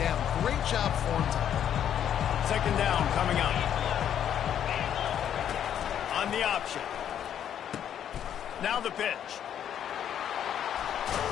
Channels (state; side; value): quieter; right; 9.6 dB